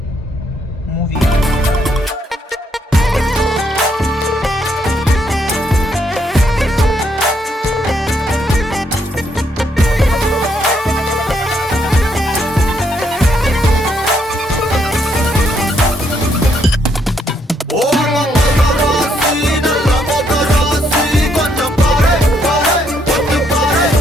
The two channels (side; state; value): both; normal; correlation 0.73